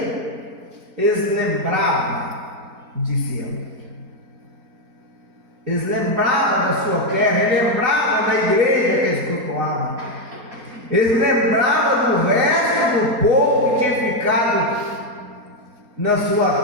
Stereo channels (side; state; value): left; late; 4.3 ms